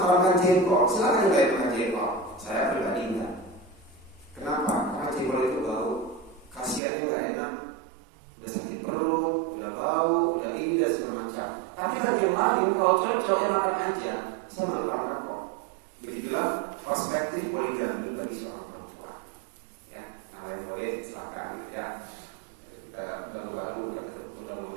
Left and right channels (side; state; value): left; drops out; at 6.8 s